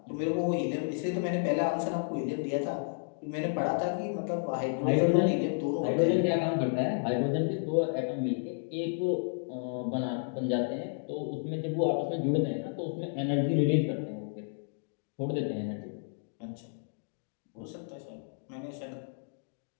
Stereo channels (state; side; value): silent; right; digital silence